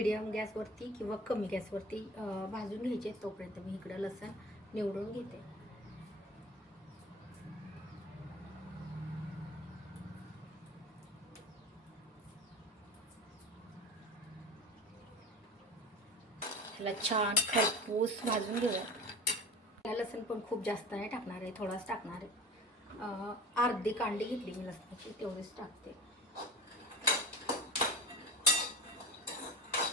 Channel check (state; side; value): normal; both; correlation 0.35